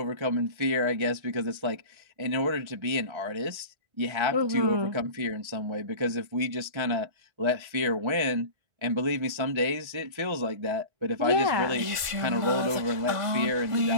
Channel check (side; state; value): left; late; 1.5 ms